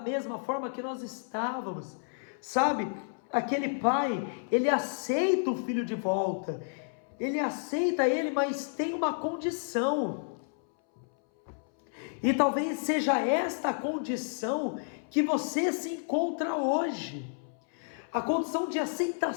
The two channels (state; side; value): silent; right; 57 dB below the other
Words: forma que nós estávamos. Sabe, aquele pai, ele aceita o filho de volta, ele aceita ele, mas tem uma condição. E talvez seja esta a condição que você se encontra hoje, a condição de